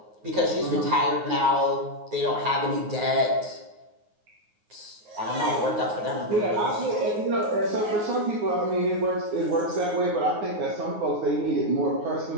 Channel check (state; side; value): late; left; 9.4 ms